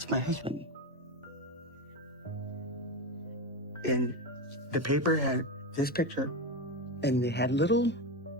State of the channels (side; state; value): both; normal; correlation 0.17